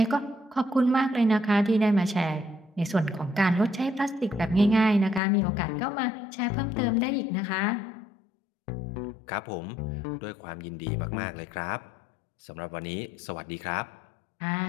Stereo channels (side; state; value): right; drops out; at 5.2 s